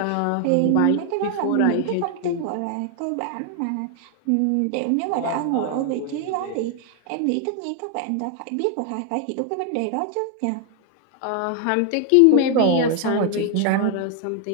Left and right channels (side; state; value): both; different; correlation 0.00